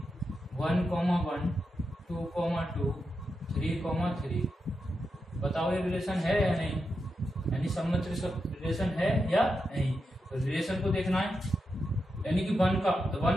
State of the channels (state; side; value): normal; both; correlation 0.87